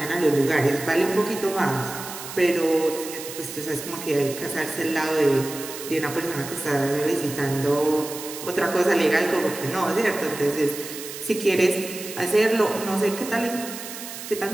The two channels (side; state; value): right; noise; hiss, 10 dB below the sound